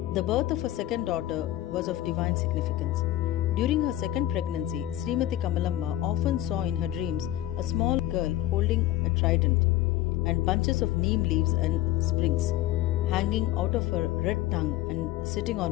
The birth of her second daughter was of divine significance. During her second pregnancy, Srimati Kamalamma often saw in her dreams a small girl holding a trident and bunches of neem leaves and sprigs hanging out of her red tongue and sitting on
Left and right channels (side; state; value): right; quieter; 14.3 dB